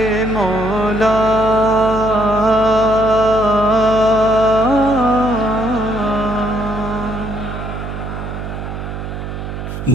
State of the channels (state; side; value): noise; right; hum, 7 dB below the sound